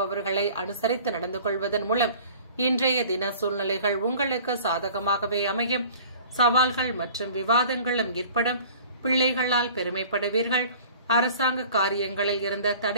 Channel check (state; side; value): inverted; both; correlation -0.47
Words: அனுசரித்து நடந்து கொள்வதன் மூலம் இன்றைய தின சூழ்நிலைகள் உங்களுக்கு சாதகமாகவே அமையும். சவால்கள் மற்றும் விவாதங்களும் ஏற்படும். பிள்ளைகளால் பெருமைப்படுவீர்கள். அரசாங்க காரியங்களில் இருந்த